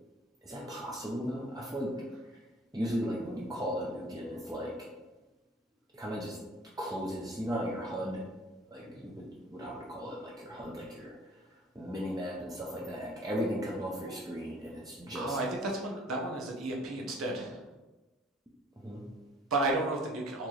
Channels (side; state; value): both; normal; correlation 0.53